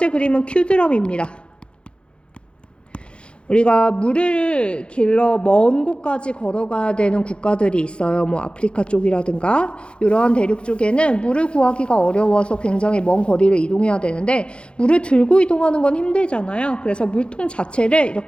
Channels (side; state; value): right; late; 0.056 ms